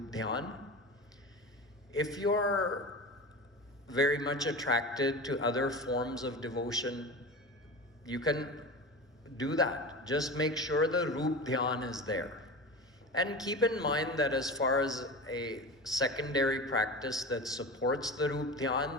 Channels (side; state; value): both; normal; correlation 0.30